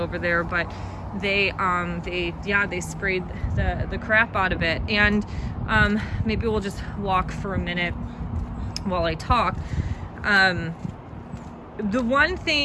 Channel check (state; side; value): identical; both; correlation 1.00